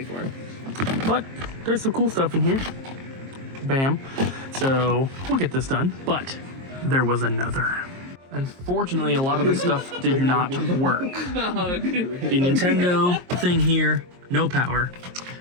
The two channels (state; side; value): late; left; 22 ms